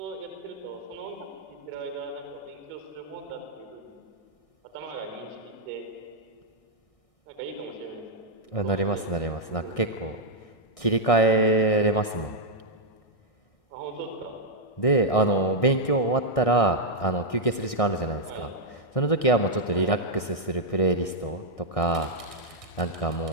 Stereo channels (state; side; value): late; right; 1.6 ms